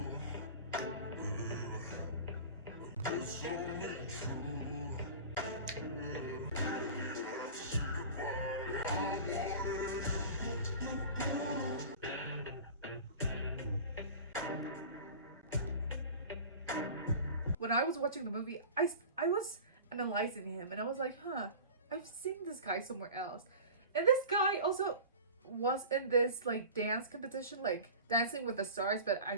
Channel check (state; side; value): inverted; both; correlation -0.37